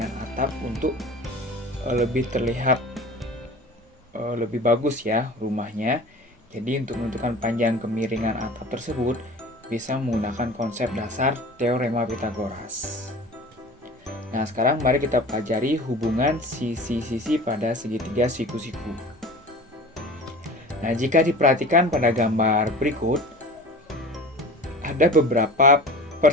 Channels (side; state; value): both; normal; correlation 0.38